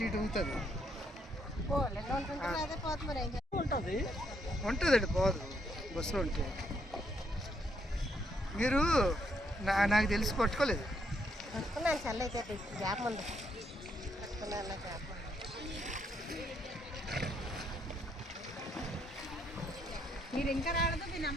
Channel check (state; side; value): normal; both; correlation 0.74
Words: ఇటు అవుతుంది అదే పోతుంది మరి ఏం ఉంటుందండి పోదు బస్సులో ఉంటే మీరు నాకు తెలిసి పట్టుకోలేదు పట్టుకున్నాను చల్ల అయితే గ్యాప్ ఉంది పట్టుకున్నాను గ్యాప్ మీరు ఇంకా రాలేదు మీ